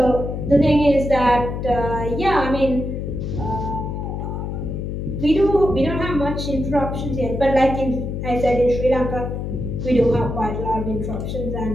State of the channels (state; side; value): noise; left; hum, 4 dB below the sound